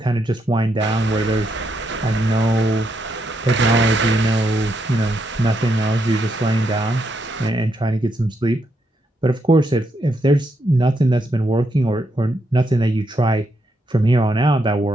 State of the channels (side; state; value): both; normal; correlation 0.79